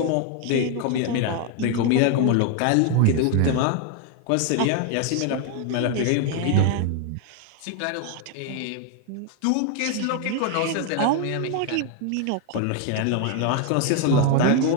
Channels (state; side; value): different; both; correlation 0.01